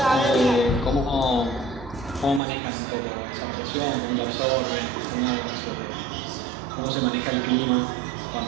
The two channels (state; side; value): drops out; left; at 2.4 s